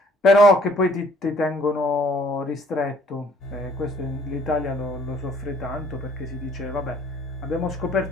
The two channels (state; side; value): normal; both; correlation 0.60